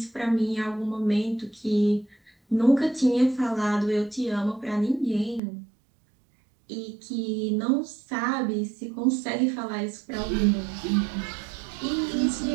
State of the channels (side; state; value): left; drops out; at 5.4 s